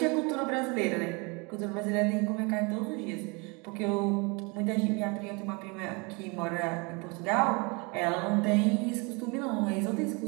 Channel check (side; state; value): left; quieter; 29.6 dB